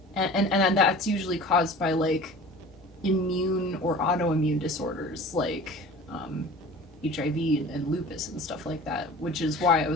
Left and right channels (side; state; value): both; normal; correlation 0.41